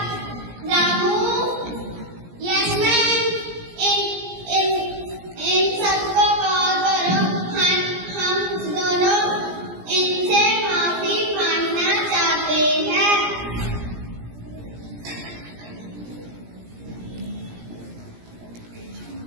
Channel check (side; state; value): left; late; 17 ms